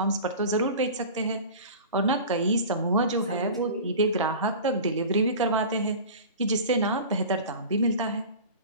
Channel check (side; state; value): both; inverted; correlation -0.36